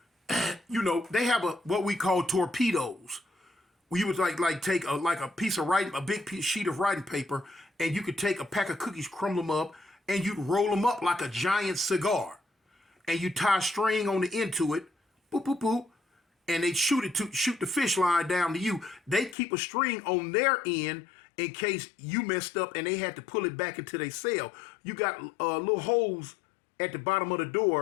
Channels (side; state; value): right; drops out; at 19.4 s